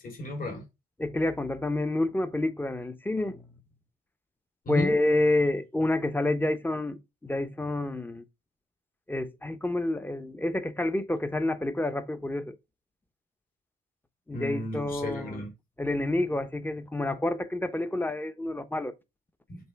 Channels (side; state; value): both; normal; correlation 0.91